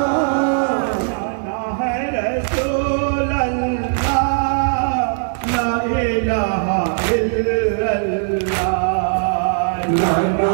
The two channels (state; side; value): silent; left; 67 dB below the other